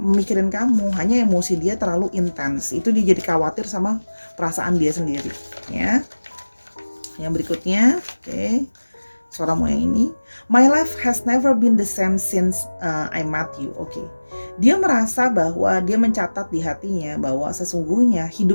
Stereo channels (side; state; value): both; inverted; correlation -1.00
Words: kamu, hanya emosi dia terlalu intens. Itu dia jadi khawatir sama perasaan dia sendiri ya. Yang berikutnya, oke. Sora mau yang ini. My life has never been the same since I met you. Oke. Dia merasa bahwa dia mencatat di hatinya bahwa sesungguhnya